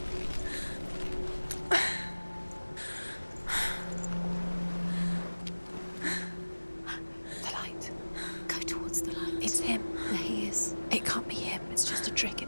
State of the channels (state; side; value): inverted; both; correlation -1.00